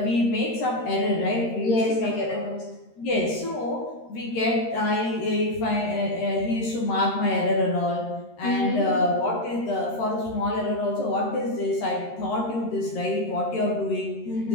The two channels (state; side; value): late; right; 13 ms